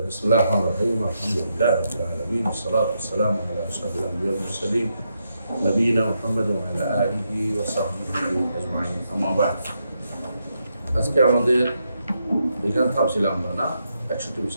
بسم الله الرحمن الرحيم الحمد لله رب العالمين والصلاة والسلام على أشرف الأنبياء والمرسلين نبينا محمد وعلى آله وصحبه أجمعين أما بعد আজকে আমাদের এখানে থামছিলাম আমরা না 61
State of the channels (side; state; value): both; inverted; correlation -0.81